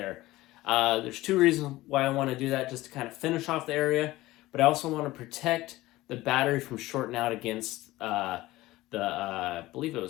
There's two reasons why I want to do that, just to kind of finish off the area, but I also want to protect the battery from shorting out against I believe it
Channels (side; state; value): right; quieter; 17.8 dB